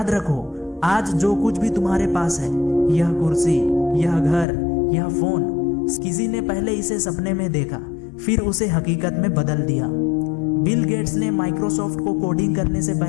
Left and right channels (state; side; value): drops out; right; at 4.5 s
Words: रखो, आज जो कुछ भी तुम्हारे पास है, यह कुर्सी, यह घर, यह फोन, किसी ने पहले इसे सपने में देखा, फिर उसे हकीकत में बदल दिया। बिल गेट्स ने माइक्रोसॉफ्ट को कोडिंग करने से